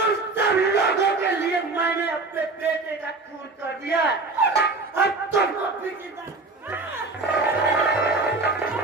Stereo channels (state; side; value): quieter; left; 3.5 dB